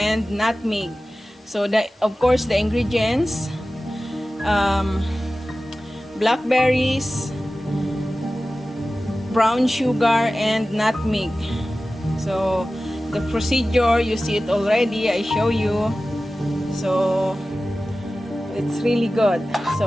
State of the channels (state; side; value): normal; both; correlation 0.96